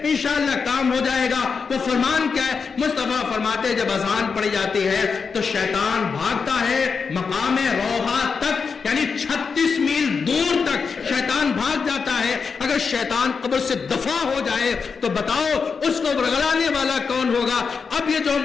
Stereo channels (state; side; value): quieter; right; 5.4 dB